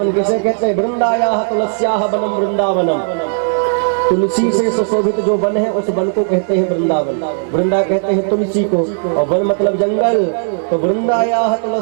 किसे कहते हैं? वृंदायाः तुलस्याः वनम वृंदावनम। तुलसी से सुशोभित जो वन है उस वन को कहते हैं वृंदावन। वृंदा कहते हैं तुलसी को, और वन मतलब जंगल। तो वृंदायाः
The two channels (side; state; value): left; silent; digital silence